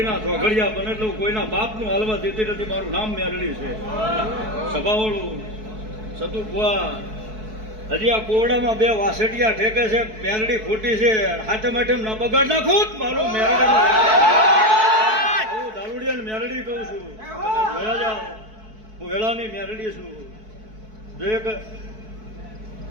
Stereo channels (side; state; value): left; late; 4.6 ms